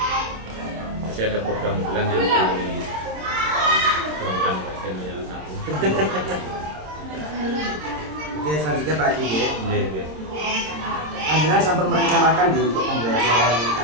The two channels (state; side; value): late; left; 26 ms